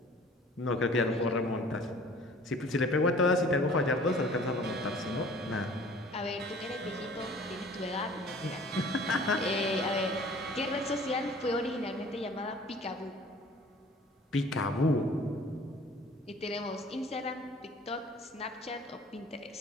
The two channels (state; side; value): normal; both; correlation 0.49